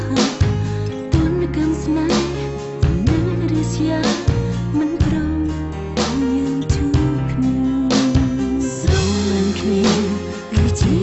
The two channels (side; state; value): both; identical; correlation 1.00